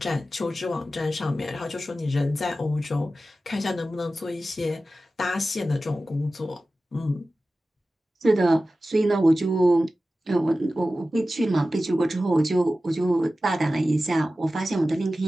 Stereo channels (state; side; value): normal; both; correlation 0.95